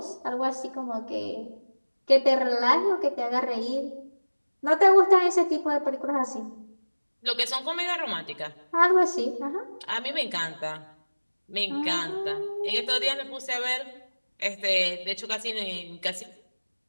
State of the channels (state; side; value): inverted; both; correlation -1.00